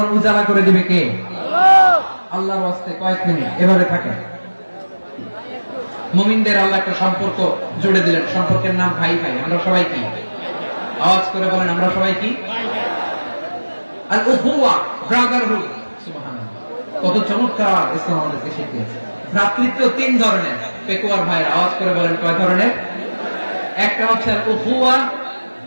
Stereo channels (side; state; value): both; inverted; correlation -1.00